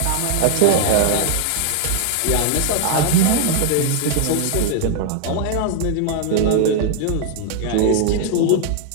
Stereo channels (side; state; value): both; different; correlation 0.00